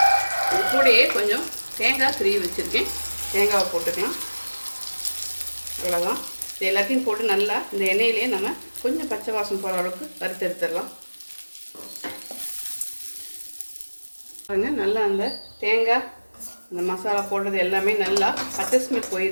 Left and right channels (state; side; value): inverted; both; correlation -1.00